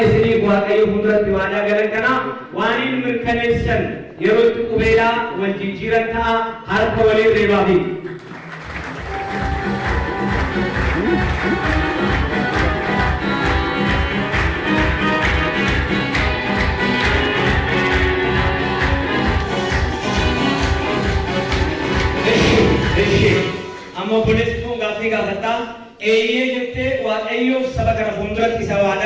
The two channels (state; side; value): identical; both; correlation 1.00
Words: isinii waaqayyo fuulduratti waadaa galan kana waan hin mirkaneessan yeroo itti qubeelaa wal jijjiiran ta'a harka waliin reebaafi. Amma obboleessi kun gaaffii gaafadha. Eeyyee jettee waaqayyoof saba kana fuulduratti isa